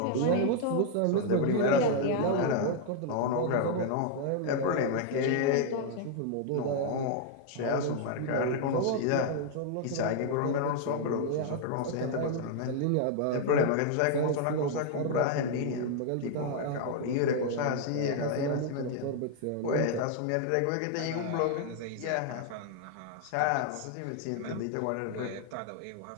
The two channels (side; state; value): both; different; correlation 0.00